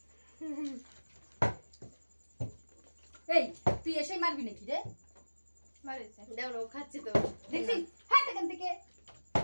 এই তুই এসেই মারবি নাকি রে মারেছে দেখো ও খাচ্ছে তো দেখছি হাত এখান থেকে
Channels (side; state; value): both; inverted; correlation -1.00